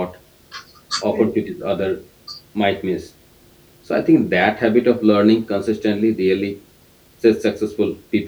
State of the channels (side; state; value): both; identical; correlation 1.00